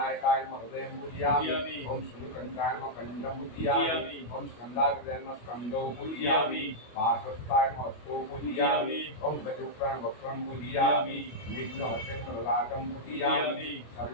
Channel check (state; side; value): late; right; 25 ms